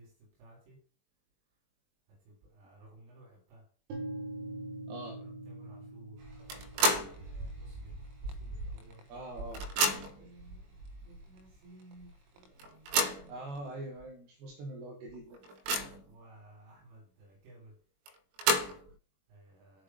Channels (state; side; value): late; left; 21 ms